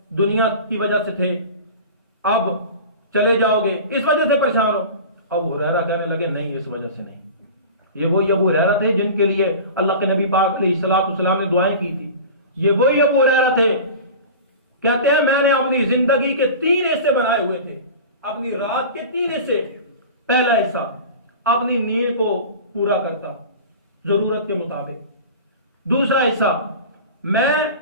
دنیا کی وجہ سے تھے اب چلے جاؤ گے، اس وجہ سے پریشان ہو؟ ابو ہریرہ کہنے لگے نہیں، اس وجہ سے نہیں. یہ وہی ابو ہریرہ تھے جن کے لیے اللہ کے نبی پاک علیہ الصلوۃ والسلام نے دعائیں کی تھی. یہ وہی ابو ہریرہ تھے. کہتے ہیں میں نے اپنی زندگی کے 3 حصے بنائے ہوئے تھے. اپنی رات کے 3 حصے. پہلا حصہ اپنی نیند کو پورا کرتا ضرورت کے مطابق. دوسرا حصہ میں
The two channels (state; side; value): inverted; both; correlation -0.35